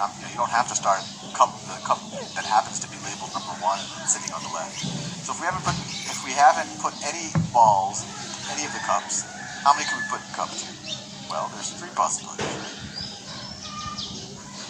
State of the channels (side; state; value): both; identical; correlation 1.00